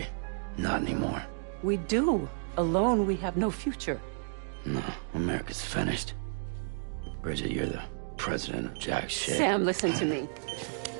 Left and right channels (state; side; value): silent; left; digital silence